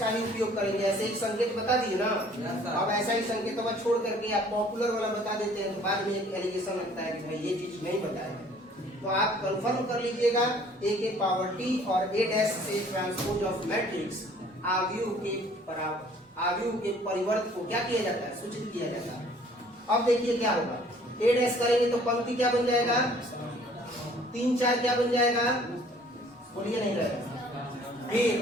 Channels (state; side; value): normal; both; correlation 0.56